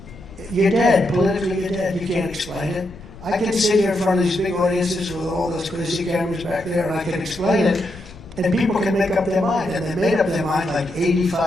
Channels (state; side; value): noise; left; rumble, 18 dB below the sound